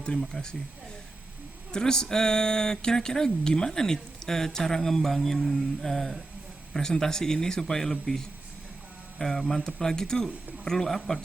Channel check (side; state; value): left; quieter; 3.2 dB